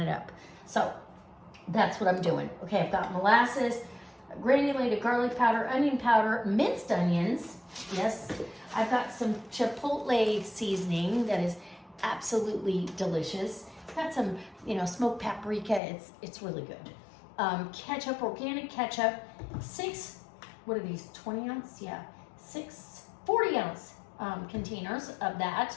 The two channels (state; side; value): drops out; right; at 15.8 s